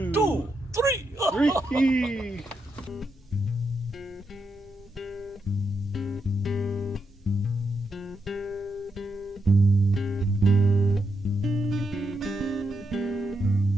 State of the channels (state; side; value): normal; both; correlation 0.83